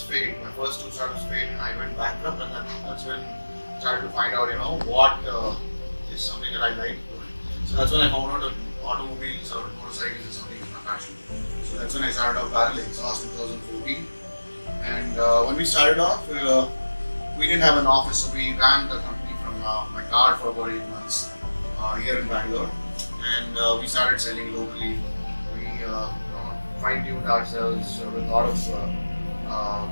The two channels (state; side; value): inverted; both; correlation -1.00